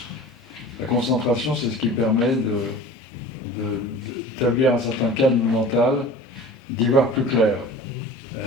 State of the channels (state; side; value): normal; both; correlation 0.40